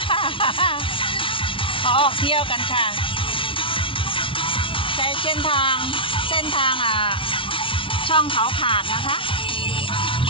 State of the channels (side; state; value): right; late; 0.25 ms